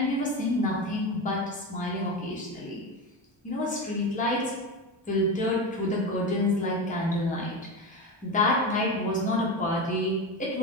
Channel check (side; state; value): both; normal; correlation 0.21